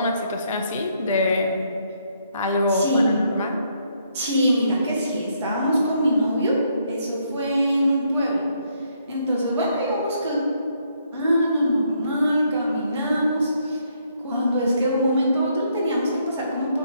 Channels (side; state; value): both; inverted; correlation -0.73